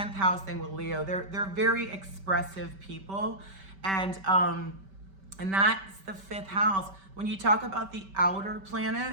house thing with Leo. They're very expressive people. And that's the 5th house. When you talk about the outer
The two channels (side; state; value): left; late; 5.2 ms